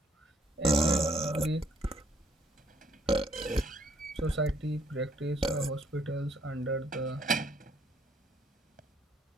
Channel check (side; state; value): both; normal; correlation 0.67